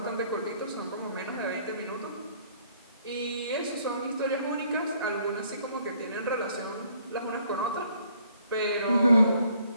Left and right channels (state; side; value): inverted; both; correlation -0.63